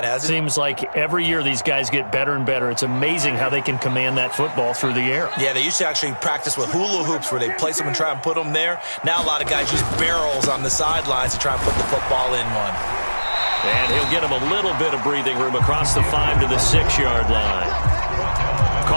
hasn't it? Seems like every year these guys get better and better. It's amazing how they can command that football through the air. Yeah, they used to actually practice with hula hoops where they place them and try and put them there. Now a lot of guys use barrels on the sidelines to try and put the football in one. And he'll get him a little bit of breathing room across the 5 to the 6-yard line.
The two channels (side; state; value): both; inverted; correlation -1.00